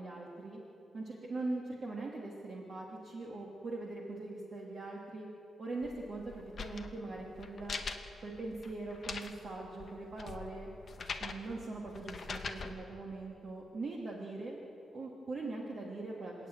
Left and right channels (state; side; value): normal; both; correlation 0.85